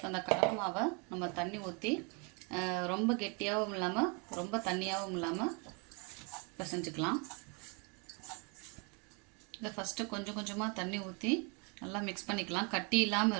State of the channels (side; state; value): left; quieter; 33.3 dB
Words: அந்த கடலை மாவை நம்ம தண்ணி ஊற்றி ரொம்ப கெட்டியாகவும் இல்லாமல் ரொம்ப தண்ணியாகவும் இல்லாமல் பிசைஞ்சுக்கலாம். இதை ஃபஸ்ட்டு கொஞ்சம் கொஞ்சமாக தண்ணி ஊற்றி நல்லா மிக்ஸ் பண்ணிக்கலாம். கட்டி இல்லாமல்